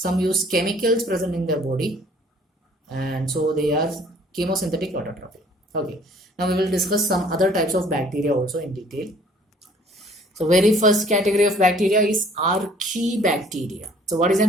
use chemicals present in their body, and so they are chemosynthetic autotrophic. Okay, now we will discuss some other types of bacteria also in detail. So very first category of bacteria is archaebacteria. So what is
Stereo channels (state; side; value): normal; both; correlation 0.56